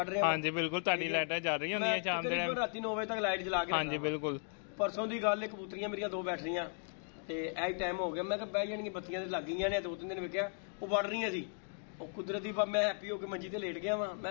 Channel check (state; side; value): silent; right; 54 dB below the other